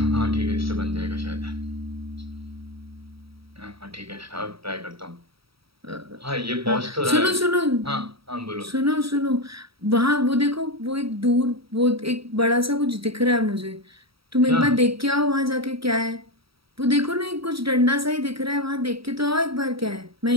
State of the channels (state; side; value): late; left; 0.76 ms